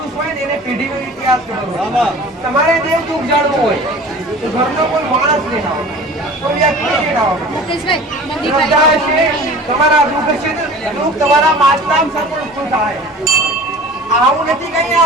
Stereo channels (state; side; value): normal; both; correlation 0.41